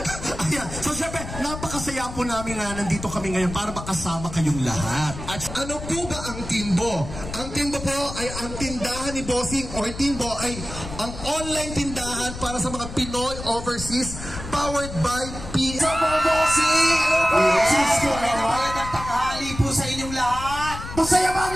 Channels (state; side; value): noise; left; rumble, 10 dB below the sound